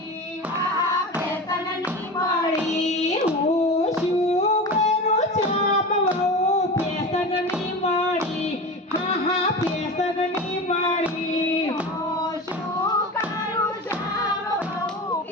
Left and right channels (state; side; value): normal; both; correlation 0.29